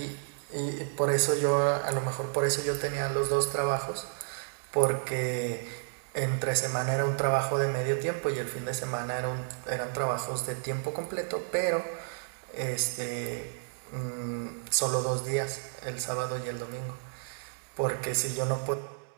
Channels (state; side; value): silent; left; digital silence